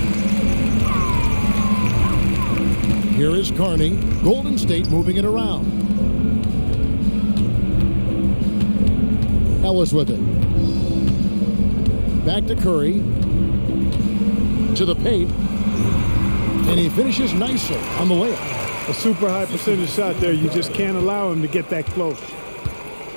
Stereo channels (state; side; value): inverted; both; correlation -1.00